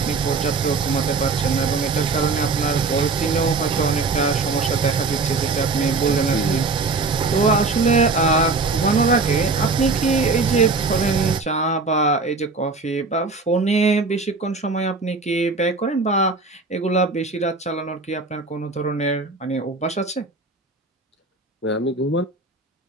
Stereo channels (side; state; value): left; quieter; 3.9 dB